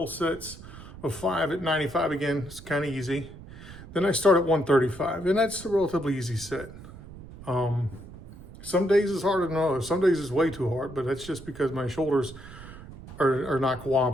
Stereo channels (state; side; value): noise; right; rumble, 16 dB below the sound